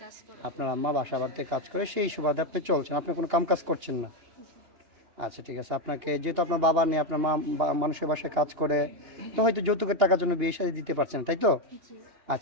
কাজ করে। আপনার আম্মা বাসা বাড়িতে কাজ করে, সেই সুবাদে আপনি চলছেন, আপনি কোনো কাম কাজ করছেন না। আচ্ছা, ঠিক আছে। আপনাকে যেহেতু আপনার বাবা নেই, আপনার মা মানুষের বাসায় কাজ করে, তো হয়তো যৌতুকের টাকার জন্য বিয়ে শাদী দিতে পারছেন, তাই তো? জি।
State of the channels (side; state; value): left; late; 2.8 ms